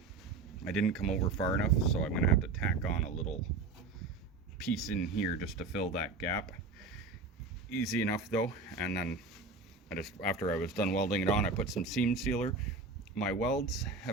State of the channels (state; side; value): quieter; left; 3.9 dB